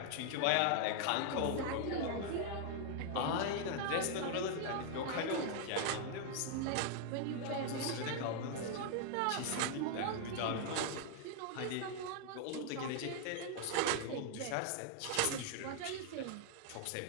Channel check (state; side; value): different; both; correlation 0.00